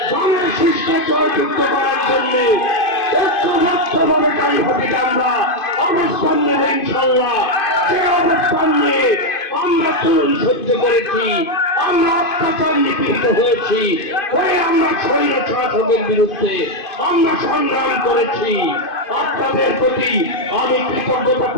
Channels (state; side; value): late; right; 2.5 ms